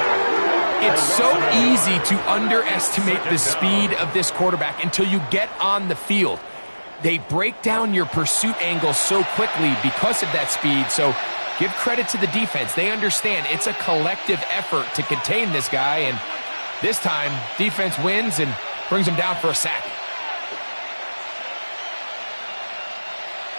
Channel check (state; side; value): inverted; both; correlation -1.00